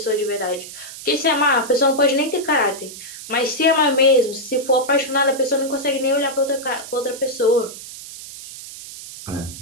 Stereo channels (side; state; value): right; noise; hiss, 13 dB below the sound